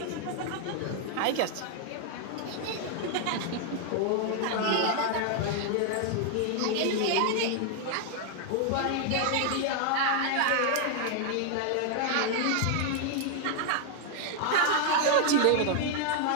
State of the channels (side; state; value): both; different; correlation 0.00